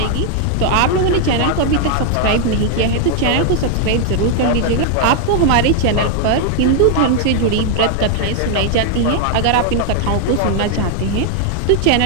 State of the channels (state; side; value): different; both; correlation 0.01